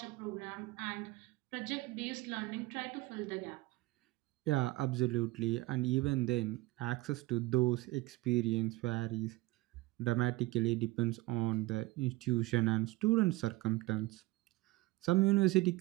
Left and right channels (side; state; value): left; quieter; 20.1 dB